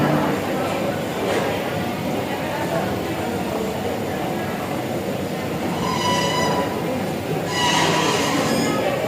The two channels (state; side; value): identical; both; correlation 1.00